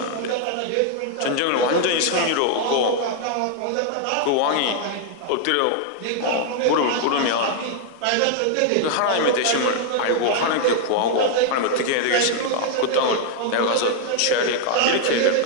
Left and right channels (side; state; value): both; different; correlation 0.00